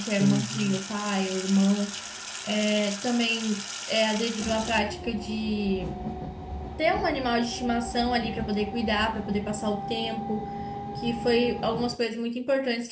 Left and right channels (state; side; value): identical; both; correlation 1.00